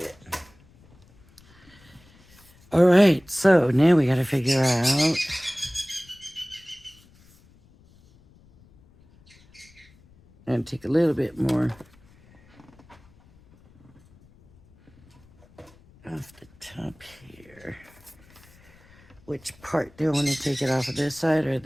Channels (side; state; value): left; noise; rumble, 28 dB below the sound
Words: All right, so now we got to figure out And take a little bit more off the top here. Which part do I want to take it off of, this side or